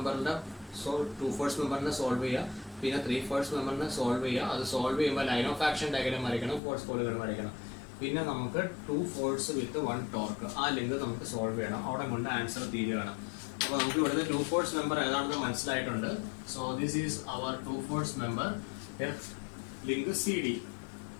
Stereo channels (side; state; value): right; drops out; at 6.6 s